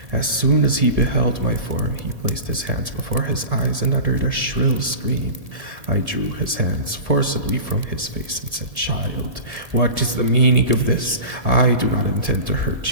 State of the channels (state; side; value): late; left; 1.7 ms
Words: As soon as he beheld my form, he placed his hands before his eyes and uttered a shrill scream. I drew his hands forcibly from his face and said, "Child, what is the meaning of this? I do not intend to